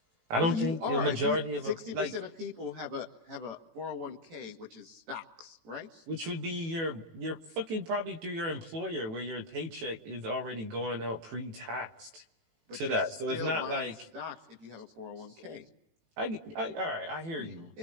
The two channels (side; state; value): left; late; 18 ms